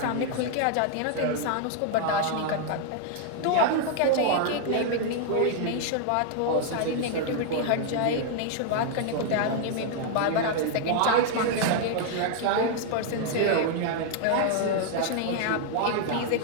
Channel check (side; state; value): both; different; correlation 0.00